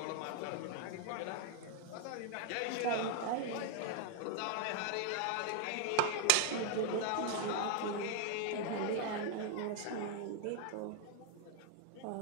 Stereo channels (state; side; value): different; both; correlation 0.00